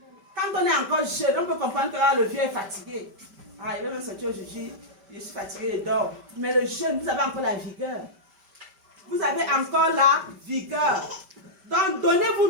Quand on est encore jeune, on peut comprendre que le vieux est fatigué. Ah, il veut me sortir aujourd'hui, je suis fatigué et dors. Mais le jeune, vous avez encore la vigueur. Vous avez encore la vigueur. Donc, donnez-vous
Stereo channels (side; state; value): left; late; 5.1 ms